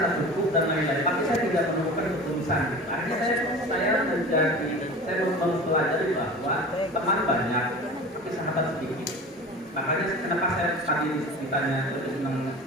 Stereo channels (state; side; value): normal; both; correlation 0.36